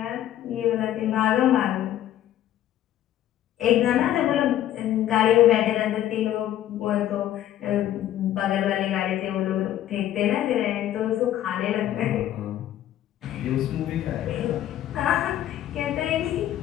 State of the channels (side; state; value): right; quieter; 12.3 dB